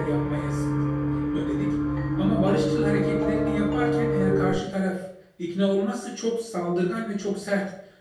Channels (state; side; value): identical; both; correlation 1.00